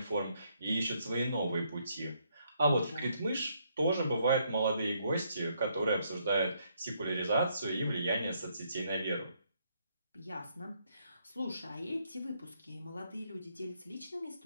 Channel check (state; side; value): inverted; both; correlation -0.72